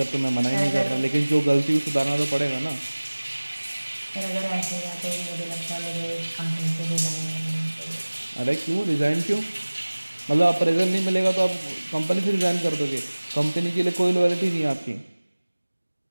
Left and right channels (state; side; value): inverted; both; correlation -1.00